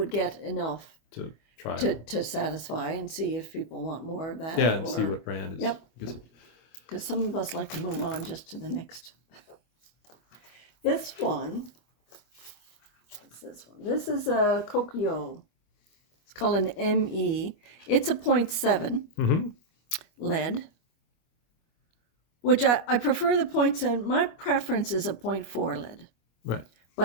get enough to try to satisfy and see if people want more of that. Yeah, and see what brand is. Yep. Because some of us like to move on just to the next. This one. What's this one? This is a Kokyo. It's called an ME. It's a 0.7 lead, which I prefer the 0.7. My preference is a 0.4 lead. Right.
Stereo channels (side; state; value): right; late; 25 ms